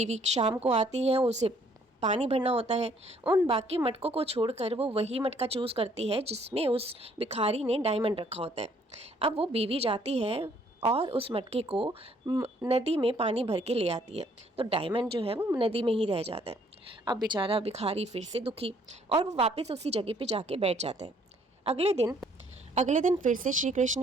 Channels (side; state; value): both; normal; correlation 0.63